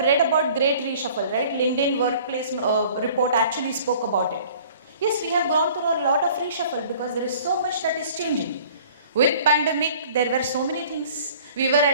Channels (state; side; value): inverted; both; correlation -0.50